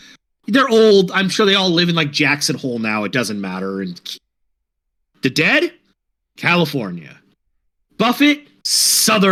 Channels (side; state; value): both; identical; correlation 1.00